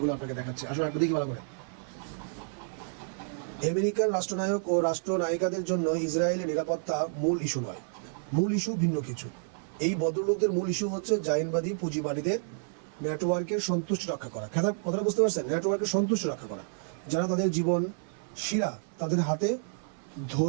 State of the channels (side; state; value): left; silent; 55 dB below the other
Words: আপনাকে দেখাচ্ছে। আসলে আপনি দেখি ভালো করে। আমেরিকার রাষ্ট্রনায়ক ও রাষ্ট্রনায়িকাদের জন্য ইসরায়েলের নিরাপত্তা মূল ইস্যু নয়, মূল ইস্যু ভিন্ন কিছু। এই ভদ্রলোকদের মূল ইস্যু হচ্ছে জাইনবাদী পুঁজিবাদীদের নেটওয়ার্কের সন্তুষ্টি রক্ষা করা। কথাটা বুঝতে পারছেন? নেটওয়ার্কের সন্তুষ্টি রক্ষা করা, যারা তাদের জীবন শিরা তাদের হাতে